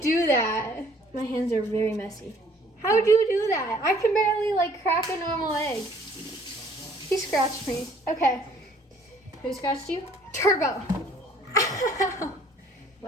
do that? My hands are very messy. How do you do that? I can barely like crack a normal egg. He scratched me. Okay. Who scratched you? Turbo.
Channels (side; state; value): both; normal; correlation 0.58